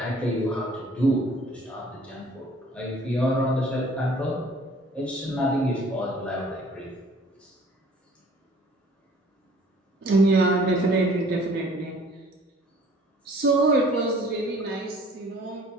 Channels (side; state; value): both; normal; correlation 0.53